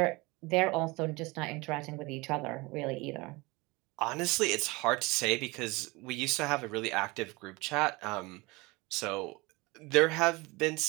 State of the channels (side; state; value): left; quieter; 24.0 dB